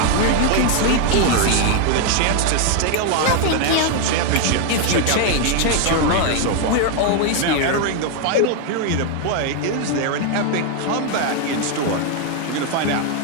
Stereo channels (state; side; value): different; both; correlation 0.01